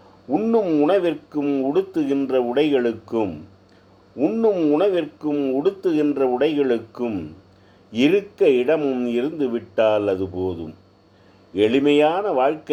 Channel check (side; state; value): both; identical; correlation 1.00